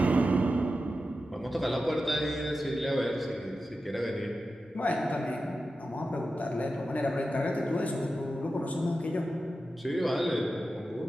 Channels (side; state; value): both; normal; correlation 0.92